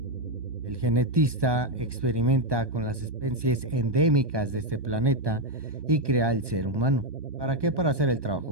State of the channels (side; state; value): left; late; 1.2 ms